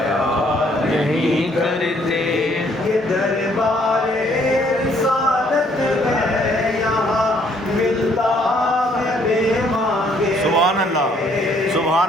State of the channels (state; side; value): normal; both; correlation 0.65